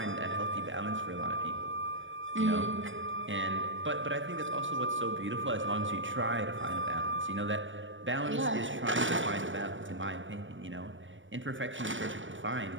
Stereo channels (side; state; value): left; late; 0.56 ms